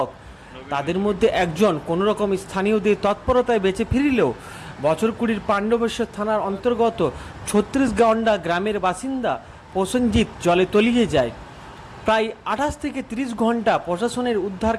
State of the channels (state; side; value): identical; both; correlation 1.00